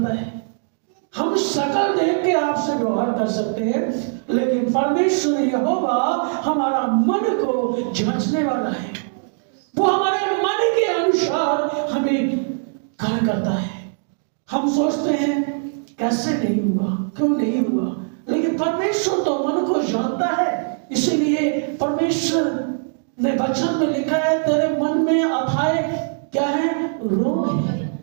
है। हम शकल देख के आपसे व्यवहार कर सकते हैं, लेकिन परमेश्वर यहोवा हमारा मन को जांचने वाला है। वो हमारे मन के अनुसार हमें कार्य करता है। हम सोचते हैं कैसे नहीं हुआ, क्यों नहीं हुआ, लेकिन परमेश्वर तो मन को जानता है। इसीलिए परमेश्वर ने वचन में लिखा है, तेरे मन में अथाए क्या है? रोग है।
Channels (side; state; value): left; silent; digital silence